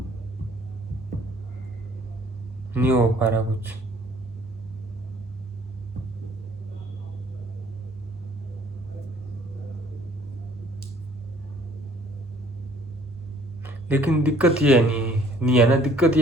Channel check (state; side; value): normal; both; correlation 0.58